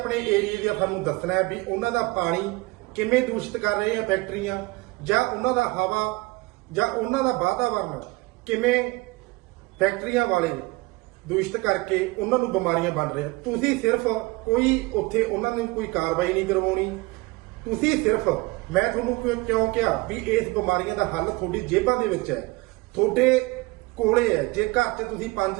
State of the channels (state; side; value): quieter; left; 23.2 dB